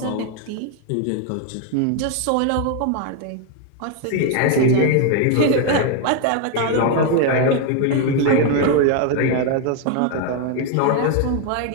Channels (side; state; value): both; different; correlation 0.01